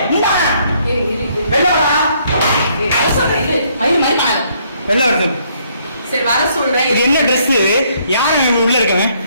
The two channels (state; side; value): inverted; both; correlation -0.68